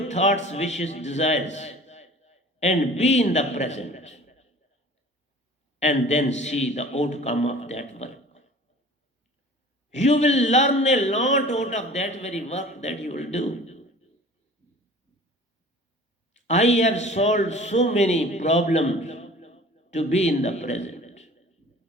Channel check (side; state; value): both; normal; correlation 0.44